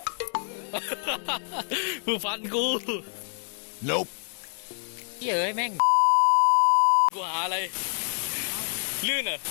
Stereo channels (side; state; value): right; silent; digital silence